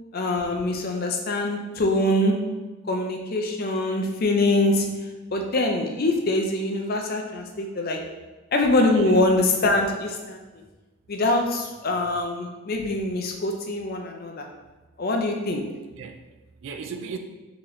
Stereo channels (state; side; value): normal; both; correlation 0.26